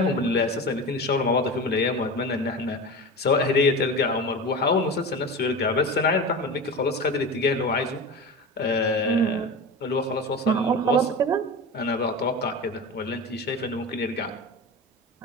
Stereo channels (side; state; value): both; normal; correlation 0.29